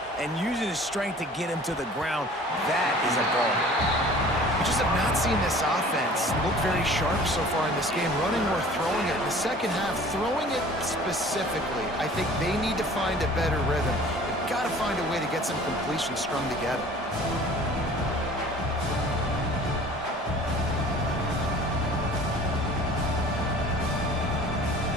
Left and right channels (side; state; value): both; normal; correlation 0.47